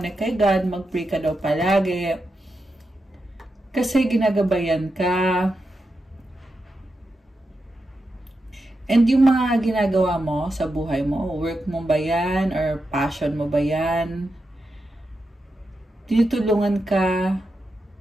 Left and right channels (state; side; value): normal; both; correlation 0.88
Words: kay God. Mag-pray ka daw palagi. Kasi ginagabayan ka. And yung mga ginagawa mo sa buhay mo, work mo ba yan or passion mo ba yan? Tinutulungan ka